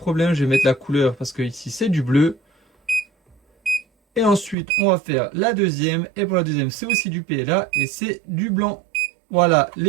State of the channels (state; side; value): drops out; left; at 4.5 s